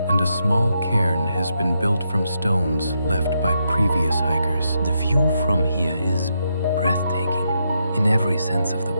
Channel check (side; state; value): both; inverted; correlation -0.81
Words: and a small cairn has been built from stones left by previous hikers. The view from here is breathtaking in every sense of the